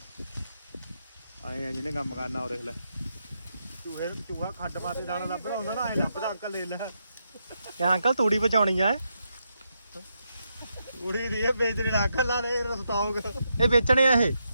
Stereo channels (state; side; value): inverted; both; correlation -0.82